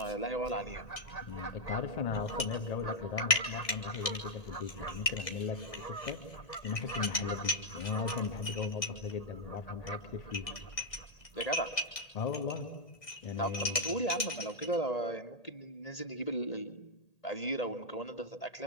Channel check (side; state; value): right; late; 1.8 ms